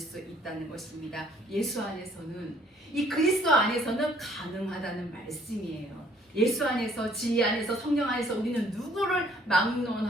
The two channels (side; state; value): both; normal; correlation 0.61